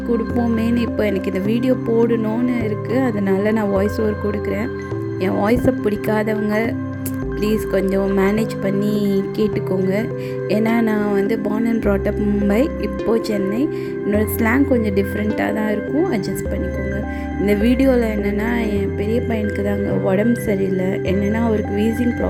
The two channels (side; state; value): both; identical; correlation 1.00